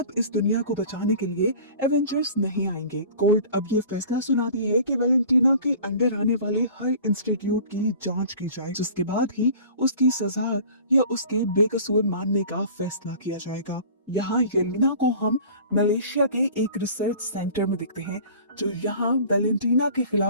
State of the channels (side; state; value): both; inverted; correlation -0.43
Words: इस दुनिया को बचाने के लिए एवेंजर्स नहीं आएंगे। कोर्ट अब ये फैसला सुनाती है कि वैलेंटीना के अंडर आने वाले हर इंस्टीट्यूट की जांच की जाए, जिसके बाद ही उसकी सजा या उसके बेकसूर मानने का फैसला किया जाएगा। यहाँ येलेना को हम मलेशिया के एक रिसर्च सेंटर में देखते हैं, जो यहाँ वैलेंटीना के